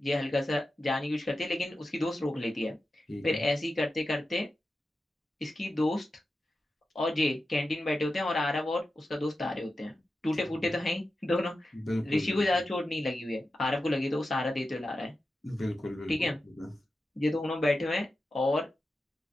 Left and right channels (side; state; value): both; normal; correlation 0.92